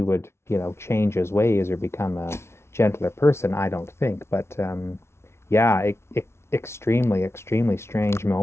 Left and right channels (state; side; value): late; right; 0.13 ms